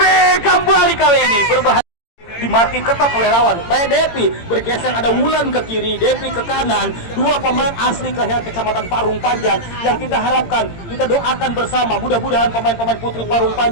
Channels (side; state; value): right; late; 18 ms